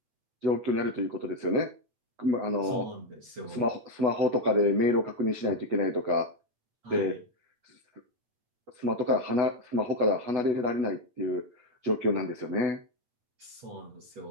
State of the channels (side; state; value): left; late; 8.4 ms